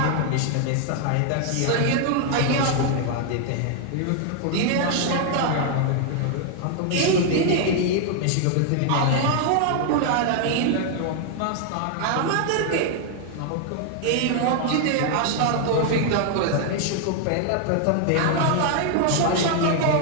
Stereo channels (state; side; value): different; both; correlation 0.00